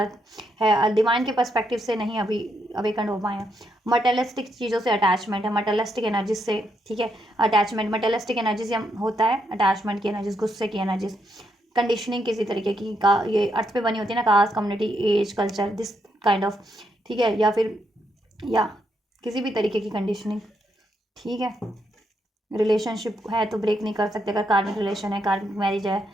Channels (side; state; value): both; normal; correlation 0.79